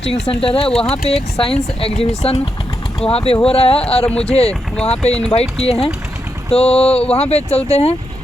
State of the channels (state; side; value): normal; both; correlation 0.84